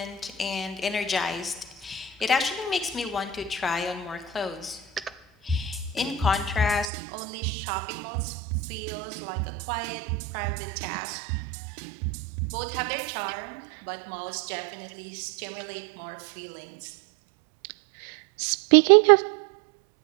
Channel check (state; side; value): drops out; left; at 6.9 s